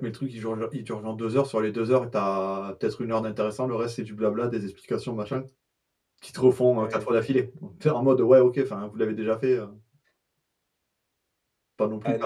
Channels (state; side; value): identical; both; correlation 1.00